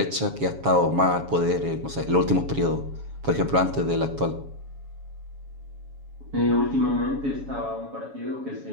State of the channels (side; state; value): left; late; 7.2 ms